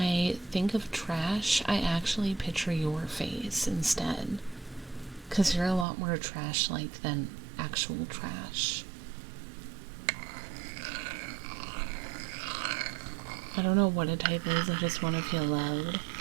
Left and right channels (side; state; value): left; drops out; at 5.9 s